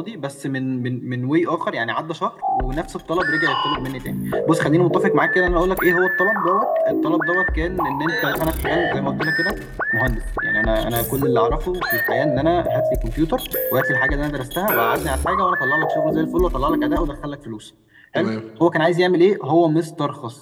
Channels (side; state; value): both; identical; correlation 1.00